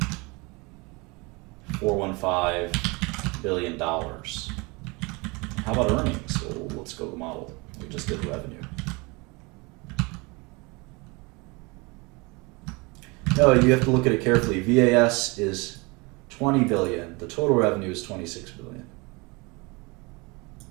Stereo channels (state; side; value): quieter; left; 27.0 dB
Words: billion. How about earnings? Well, let's go to the model. We just did revenue. No, you have to look at it carefully. VAS is 20 billion. The total revenue is 26 billion.